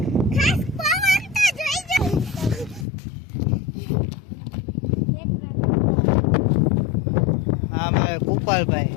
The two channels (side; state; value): right; drops out; at 2.9 s